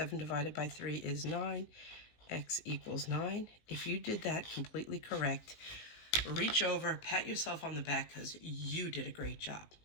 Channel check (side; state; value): right; late; 19 ms